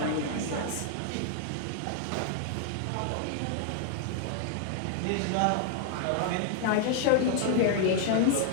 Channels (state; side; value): different; both; correlation 0.00